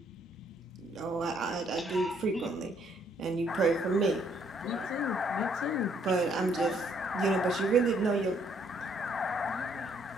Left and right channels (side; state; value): both; normal; correlation 0.67